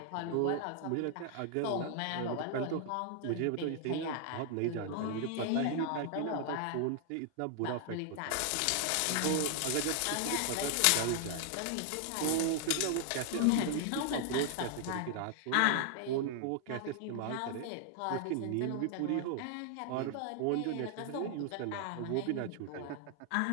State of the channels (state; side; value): different; both; correlation 0.00